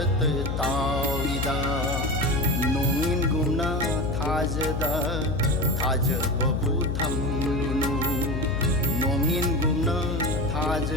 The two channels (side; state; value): left; noise; hum, 1 dB below the sound